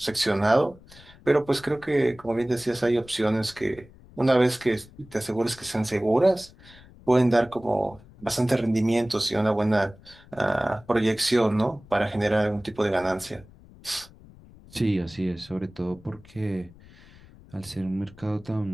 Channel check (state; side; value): noise; left; rumble, 23 dB below the sound